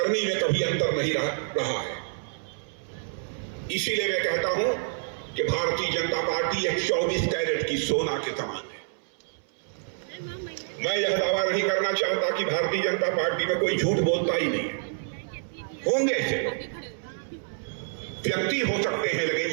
में कभी अंतर नहीं रहा है। इसीलिए मैं कहता हूं कि भारतीय जनता पार्टी एक 24 कैरेट की सोना के समान है। मैं यह दावा नहीं करना चाहता कि भारतीय जनता पार्टी में कोई झूठ बोलता ही नहीं है। होंगे ऐसे व्यक्ति हो सकते हैं, लेकिन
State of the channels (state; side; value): silent; left; 60 dB below the other